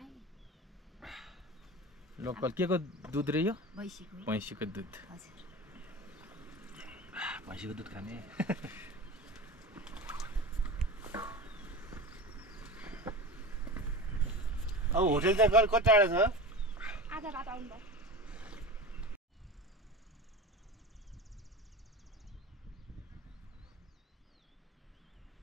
लोकल के को दुध रे यो भैँसीको दुध भैँसीको दुध खाने अब होटल चाहिँ कति टाढा छ आधा बाटो आउनु भयो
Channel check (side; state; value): both; normal; correlation 0.31